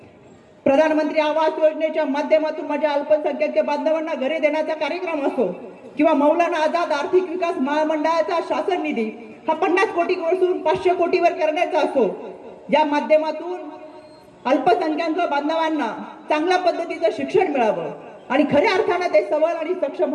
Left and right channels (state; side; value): identical; both; correlation 1.00